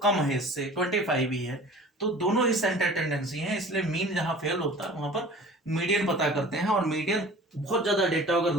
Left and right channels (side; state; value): both; normal; correlation 0.44